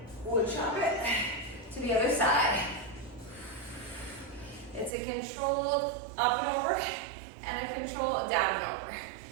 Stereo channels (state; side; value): drops out; left; at 4.9 s